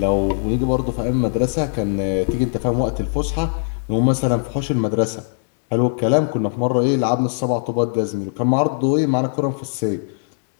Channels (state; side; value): silent; right; digital silence